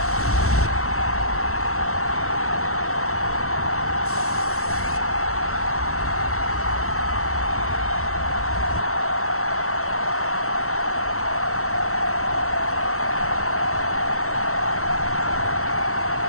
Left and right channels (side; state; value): right; late; 0.63 ms